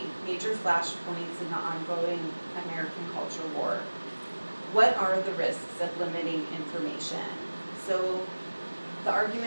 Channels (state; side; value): inverted; both; correlation -1.00